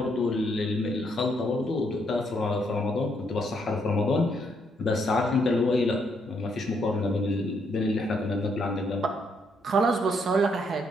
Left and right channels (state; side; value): normal; both; correlation 0.74